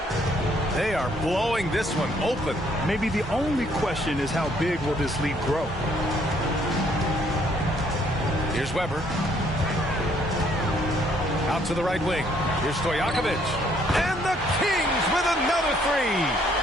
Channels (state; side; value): normal; both; correlation 0.66